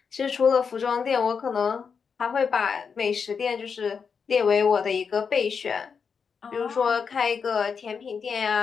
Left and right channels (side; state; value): right; quieter; 6.0 dB